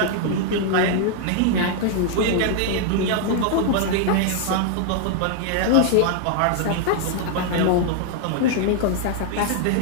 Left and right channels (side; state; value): both; different; correlation 0.00